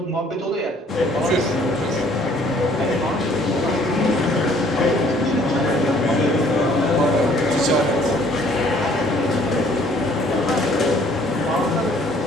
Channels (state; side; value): normal; both; correlation 0.59